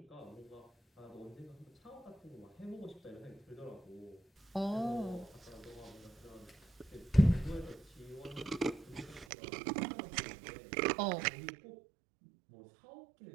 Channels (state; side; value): drops out; left; at 9.2 s